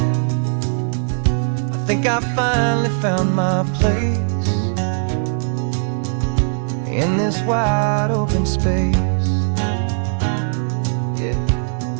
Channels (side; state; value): left; silent; digital silence